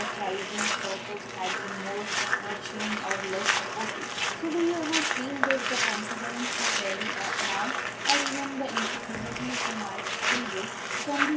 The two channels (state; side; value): identical; both; correlation 1.00